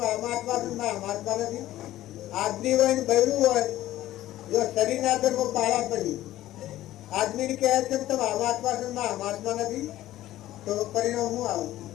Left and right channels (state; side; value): quieter; right; 14.6 dB